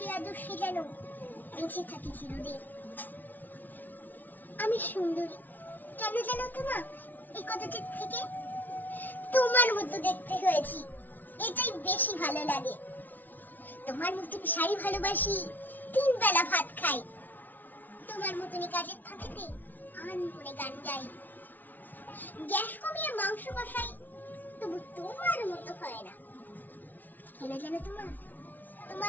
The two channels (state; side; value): late; right; 0.083 ms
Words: আদর্শে যেন বেঁচে থাকি চিরদিন। আমি সুন্দরী কেন জানো তোমার এই কথাটির থেকে? তোমার মতো দেখতে হয়েছি, এটাই বেশি ভালো লাগে। তোমার মতন শাড়ি ভালোবাসি, 3 বেলা ভাত খাই। তোমার মতনই কাজের ফাঁকেতে আন করে গান গাই। গ্যাস কমিয়ে মাংস কষাই, তবু তোমার মতো হয় না। কেন জানো